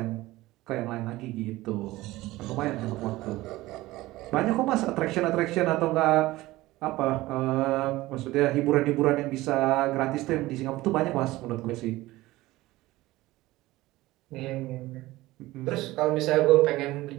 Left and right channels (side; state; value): left; quieter; 18.3 dB